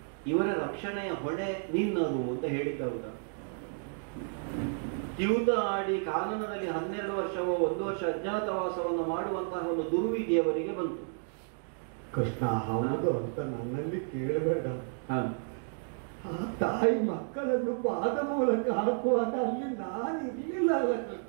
ಇವರ ರಕ್ಷಣೆಯ ಹೊಣೆ ನಿನ್ನದು ಅಂತ ಹೇಳಿದ್ದವಾಗ ದ್ಯೂತ ಆಡಿ ಕಾನನದಲ್ಲಿ 12 ವರ್ಷವೋ 1 ವರ್ಷ ಅಜ್ಞಾತವಾಸವನ್ನು ಮಾಡುವಂತಹ ಒಂದು ದುರ್ವಿಧಿಯವರಿಗೆ ಬಂತು. ಕೃಷ್ಣ, ಹೌದು ಅಂತ ನನ್ನಲ್ಲಿ ಕೇಳಬೇಡ. ಆ ತಾಯಿ ಮಕ್ಕಳನ್ನು ಪಾದ ಮೂಲಕ ಹಾಕುವಾಗ ಅಲ್ಲಿ ನಾನು ಇರ್ಲಿಲ್ಲ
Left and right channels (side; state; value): left; silent; 56 dB below the other